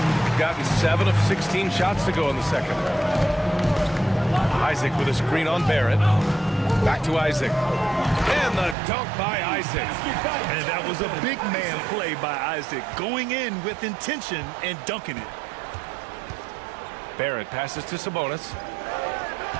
Gotten 7 of 16 shots to go in the second. Isaac with a screen on Barrett. Back to Isaac. And the dunk by Isaac. And that was a big man play by Isaac, going in with intention and dunking it. Barrett passes to Sabonis.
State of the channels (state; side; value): drops out; left; at 8.8 s